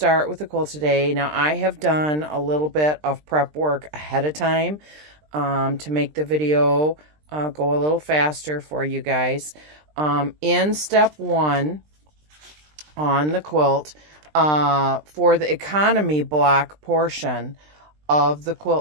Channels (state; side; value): late; left; 20 ms